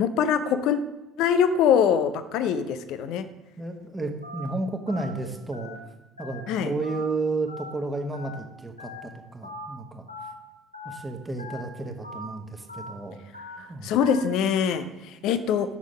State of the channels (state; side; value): quieter; right; 4.8 dB